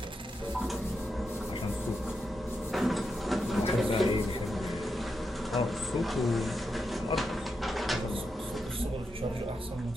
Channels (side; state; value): both; normal; correlation 0.85